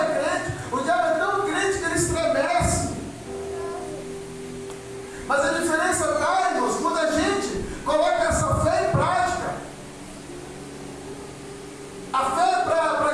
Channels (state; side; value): identical; both; correlation 1.00